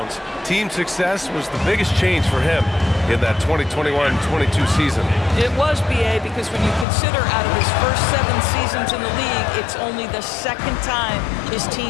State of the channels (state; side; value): drops out; right; at 6.9 s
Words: team success was the biggest change for him in that 2021-22 season. It was, B.A., because when you consider out of his first 7 seasons in the league, it's only the 2nd time his